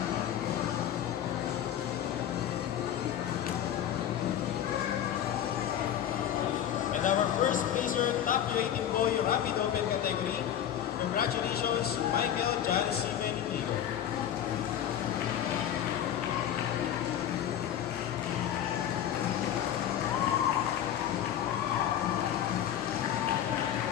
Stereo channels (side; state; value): right; quieter; 10.4 dB